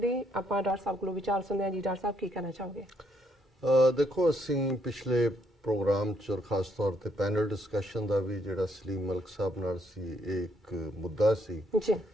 ਆਪਾਂ ਡਾਕਟਰ ਸਾਹਿਬ ਕੋਲੋਂ ਵਿਚਾਰ ਸੁਣਦੇ ਹਾਂ। ਜੀ ਡਾਕਟਰ ਸਾਹਿਬ ਕੀ ਕਹਿਣਾ ਚਾਹੋਗੇ? ਦੇਖੋ ਅਸੀਂ ਪਿਛਲੇ प्रोग्राम च और खास तौर पर पैनल डिस्कशन का भी जो सलीम मलिक साहब नाल सी एक मुद्दा सी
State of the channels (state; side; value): normal; both; correlation 0.72